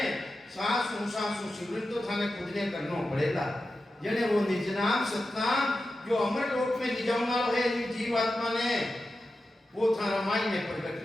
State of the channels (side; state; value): both; normal; correlation 0.92